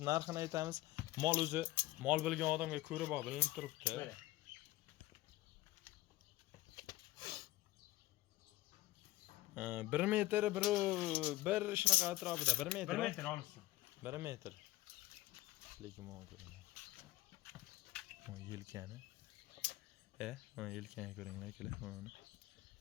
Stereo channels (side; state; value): right; quieter; 17.1 dB